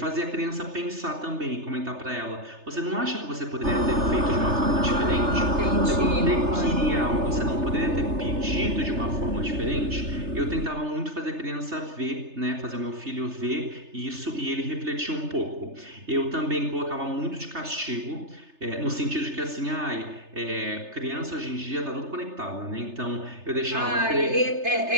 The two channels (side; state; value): left; late; 3.3 ms